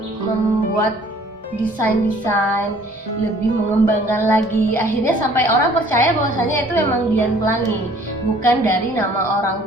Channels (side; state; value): both; normal; correlation 0.55